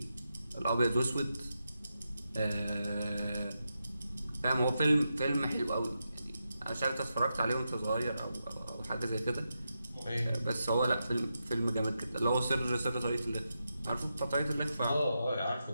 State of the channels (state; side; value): inverted; both; correlation -0.87